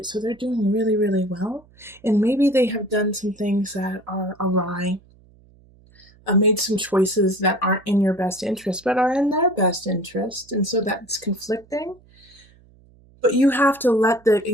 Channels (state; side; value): noise; right; hum, 28 dB below the sound